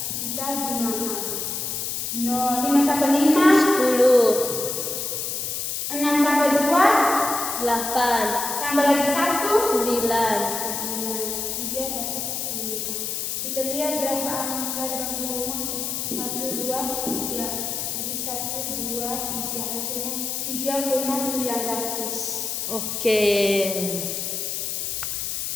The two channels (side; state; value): left; noise; hiss, 3 dB below the sound